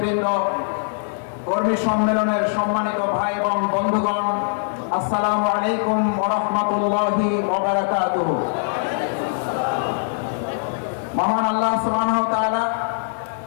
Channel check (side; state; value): right; silent; 64 dB below the other